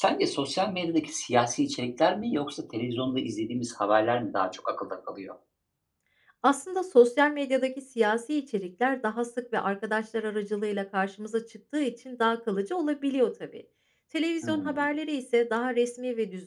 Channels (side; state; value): both; identical; correlation 1.00